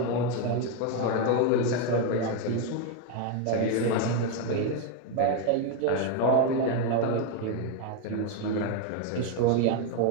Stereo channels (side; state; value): both; different; correlation 0.02